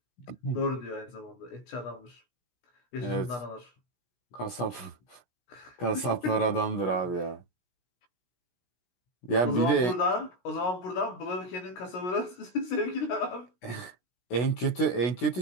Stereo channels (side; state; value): right; late; 16 ms